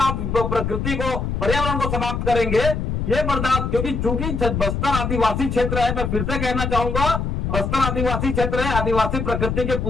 प्रकृति को, पर्यावरण को समाप्त करेंगे, ये बर्दाश्त, क्योंकि चूंकि बस्तर आदिवासी क्षेत्र है, मैं फिर से कहना चाहूंगा, बस्तर आदिवासी क्षेत्र है, आदिवासी प्रकृति के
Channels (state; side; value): noise; left; rumble, 2 dB below the sound